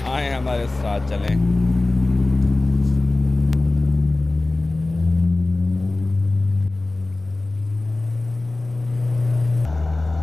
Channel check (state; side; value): quieter; right; 3.0 dB